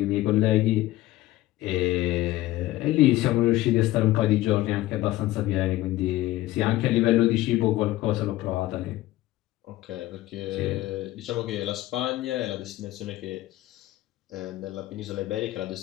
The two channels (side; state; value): right; quieter; 16.3 dB